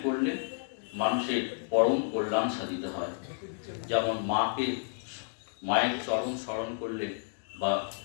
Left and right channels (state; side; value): silent; right; 57 dB below the other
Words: করলে মানুষের পরম কল্যাণ সাধিত হয়। যেমন মায়ের চরণ স্মরণ করলে বা